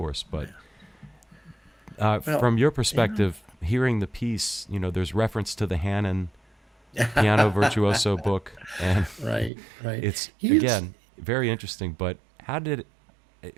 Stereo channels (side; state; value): left; drops out; at 9.5 s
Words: but from your perspective, hearing the piece, there's reference to the Hannon piano virtuoso book, and right. It's again very interesting. But